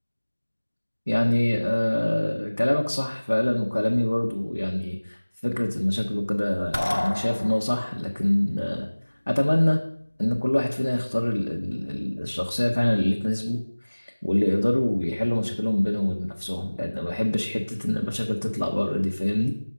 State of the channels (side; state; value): both; inverted; correlation -1.00